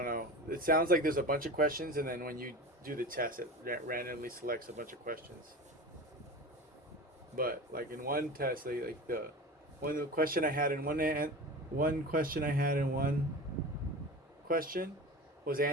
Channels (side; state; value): both; normal; correlation 0.31